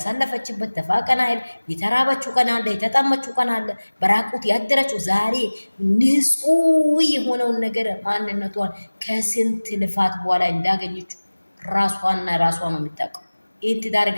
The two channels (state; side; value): inverted; both; correlation -1.00